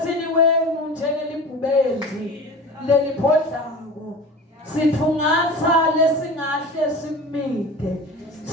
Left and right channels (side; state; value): both; normal; correlation 0.35